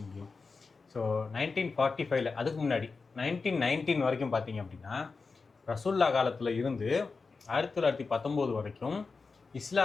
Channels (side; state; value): right; quieter; 4.4 dB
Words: முடியும். ஸோ 1945 அதுக்கு முன்னாடி 1919 வரைக்கும் பார்த்தீங்க அப்படின்னா, ரசூல்லா காலத்தில் இருந்து 1919 வரைக்கும்